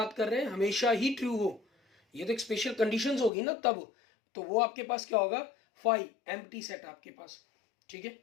कर रहे हैं हमेशा ही ट्रू हो, ये तो एक स्पेशल कंडीशंस होगी ना तब, तो वो आपके पास क्या होगा, फाई एम्प्टी सेट आपके पास, ठीक है,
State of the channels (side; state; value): right; drops out; at 3.3 s